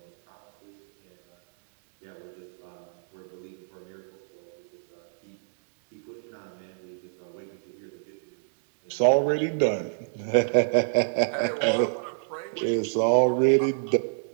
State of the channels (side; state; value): left; silent; 60 dB below the other